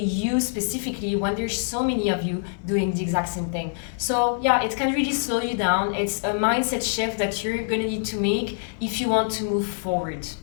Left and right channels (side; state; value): right; silent; digital silence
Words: specifically when there's so many of you doing the exact same thing? So yeah, it can really slow you down. It's a mindset shift that you're going to need to make if you want to move forward.